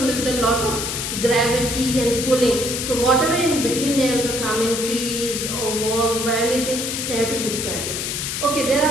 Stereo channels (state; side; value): noise; left; hiss, 3 dB below the sound